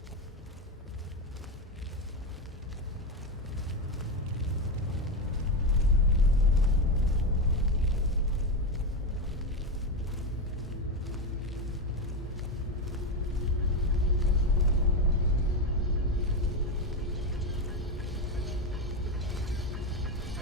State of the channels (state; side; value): normal; both; correlation 0.13